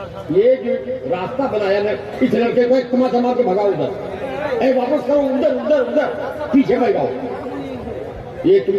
یہ جو راستہ بنایا نا، اس لڑکے کو ایک تما تما کے بھگاؤ ادھر، اے واپس کرو ادھر ادھر ادھر، پیچھے بھگاؤ. یہ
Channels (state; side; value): identical; both; correlation 1.00